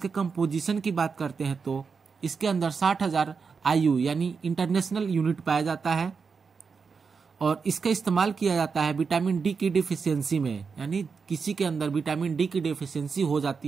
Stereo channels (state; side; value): quieter; left; 5.4 dB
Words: कंपोजिशन की बात करते हैं तो इसके अंदर 60,000 IU यानी इंटरनेशनल यूनिट पाया जाता है और इसका इस्तेमाल किया जाता है विटामिन डी की डिफिशियंसी में, यानी किसी के अंदर विटामिन डी की डिफिशियंसी हो